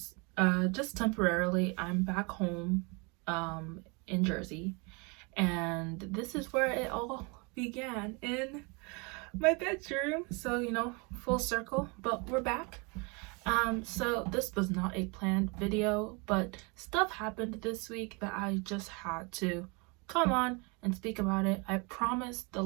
just temporarily. I'm back home in Jersey, and this is where it all began, in my bedroom. So full circle, but we're back. So this was not a planned video, but stuff happened this week that I just had to come on and speak about it. I promise the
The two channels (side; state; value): left; quieter; 30.7 dB